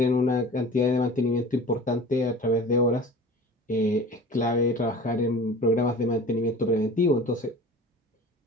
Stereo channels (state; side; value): normal; both; correlation 0.40